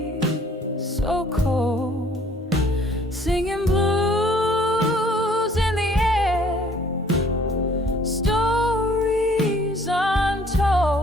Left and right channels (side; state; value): both; normal; correlation 0.58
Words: so cold, singing blues in the air, stories